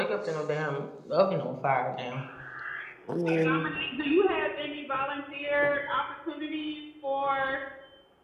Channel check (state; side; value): identical; both; correlation 1.00